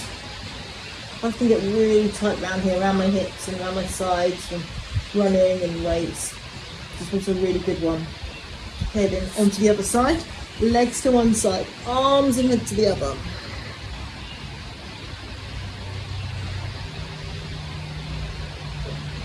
I can get really tight around here, around my hips and around my sides from running and weights. This was a really good one. Okay, then onto the other side. Legs to one side, arms and head to the other.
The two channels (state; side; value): identical; both; correlation 1.00